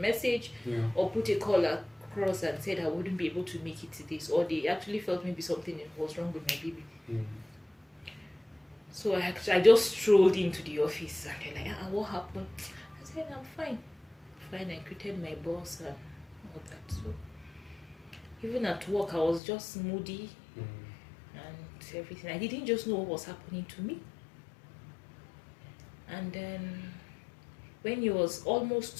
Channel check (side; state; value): right; drops out; at 19.4 s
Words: or put a call across and said I wouldn't be able to make it to this. Or they actually felt maybe something was wrong with my baby. So I just strolled into the office and they're like, what happened? I said, I'm fine. Fine, I greeted my boss and all that. So even at work, I was just moody and everything. I didn't just know what was happening to me. And then when it was